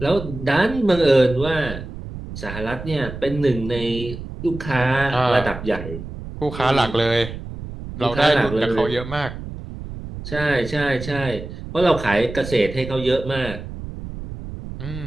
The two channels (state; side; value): noise; right; rumble, 10 dB below the sound